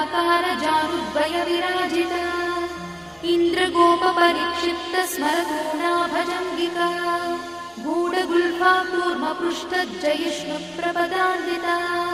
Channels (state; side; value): identical; both; correlation 1.00